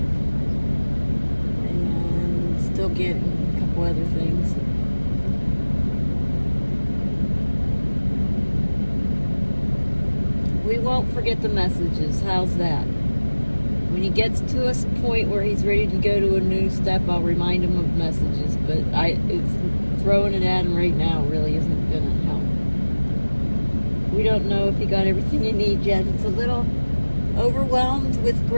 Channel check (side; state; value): both; inverted; correlation -1.00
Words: And still getting a couple other things. We won't forget the messages. How's that? When he gets to a point where he's ready to go to a new step, I'll remind him of messages. But it's throwing it at him right now really isn't gonna help. We don't know if he got everything he needs yet. It's a little overwhelmed with